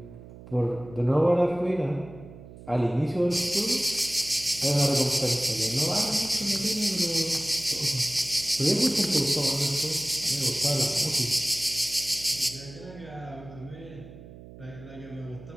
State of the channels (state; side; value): noise; right; hum, 17 dB below the sound